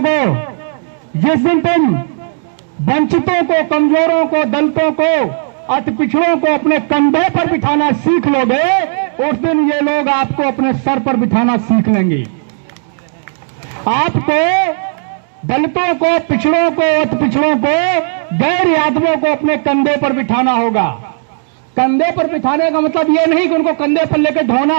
जिस दिन तुम वंचितों को, कमजोरों को, दलितों को, अति पिछड़ों को अपने कंधे पर बिठाना सीख लोगे, उस दिन ये लोग आपको अपने सर पर बिठाना सीख लेंगे। आपको दलितों को, पिछड़ों को, अति पिछड़ों को, गैर यादवों को अपने कंधे पर बिठाना होगा। कंधे पर बिठाने का मतलब यह नहीं कि उनको कंधे पर लेकर ढोना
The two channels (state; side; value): silent; left; digital silence